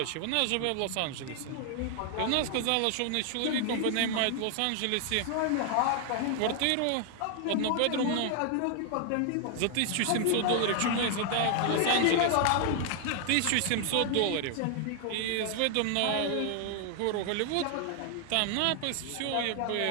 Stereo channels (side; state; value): both; different; correlation 0.00